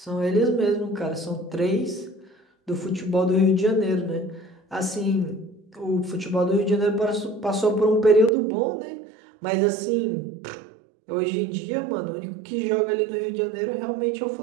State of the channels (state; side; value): drops out; left; at 8.3 s